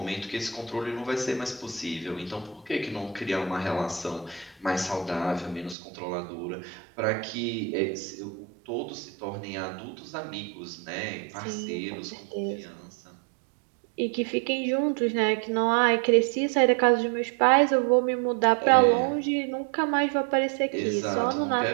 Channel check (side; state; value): left; drops out; at 5.8 s